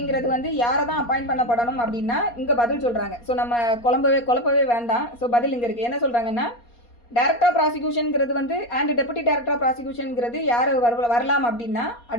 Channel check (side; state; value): right; late; 4.2 ms